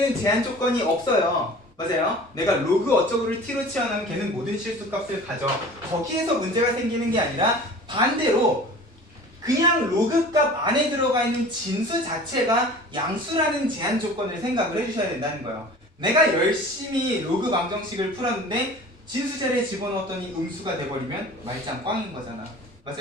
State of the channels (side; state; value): both; normal; correlation 0.42